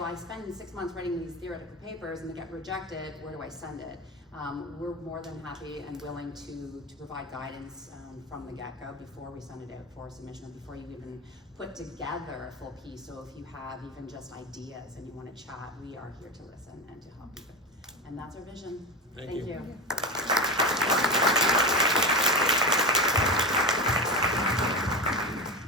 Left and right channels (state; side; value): normal; both; correlation 0.21